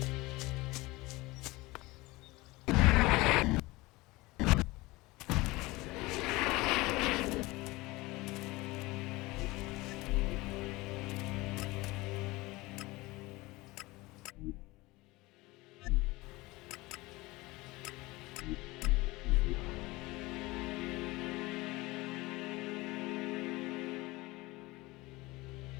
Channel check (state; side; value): quieter; right; 21.5 dB